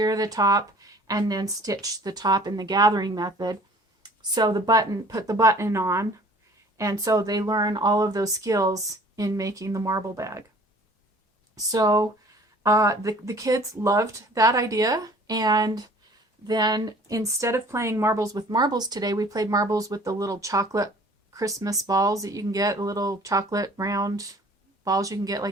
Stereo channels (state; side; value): normal; both; correlation 0.51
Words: the top, and then stitch the top in the gathering method. Sew the button, put the button on, and so they learn all of those skills in making the marble bag. So the kids loved that idea, and then instead of playing marbles with marbles today, we played marbles with the little chocolate Christmas balls that you can get, the little chocolate round balls you can get